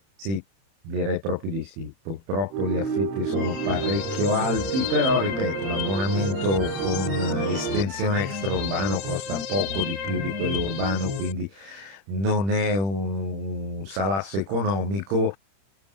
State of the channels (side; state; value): left; late; 31 ms